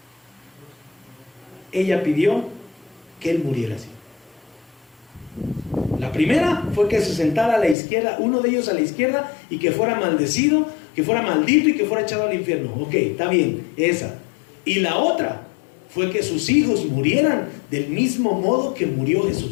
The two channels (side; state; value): right; drops out; at 7.8 s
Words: Ella pidió que él muriera así. La primera fue que se sentara a la izquierda, uno de ellos a la izquierda, y que fuera maldecido, que fuera maldito y que fuera echado al infierno. Ok, está bien, esa. Y la otra fue que sus hijos murieran del mismo modo que murió